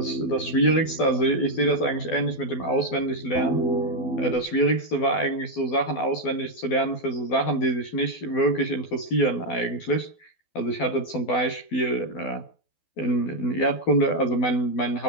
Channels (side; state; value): right; late; 12 ms